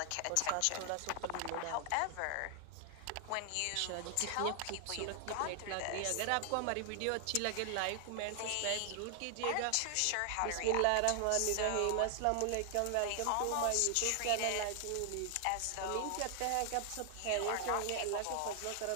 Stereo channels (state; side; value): different; both; correlation 0.00